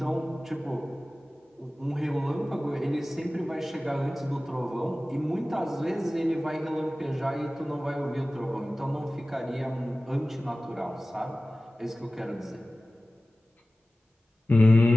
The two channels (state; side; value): normal; both; correlation 0.97